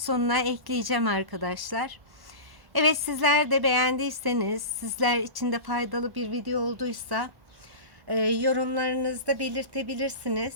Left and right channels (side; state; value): left; late; 1.1 ms